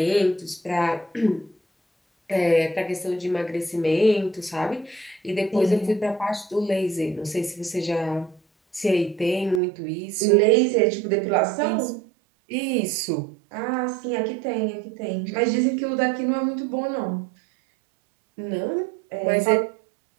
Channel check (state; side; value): drops out; left; at 9.6 s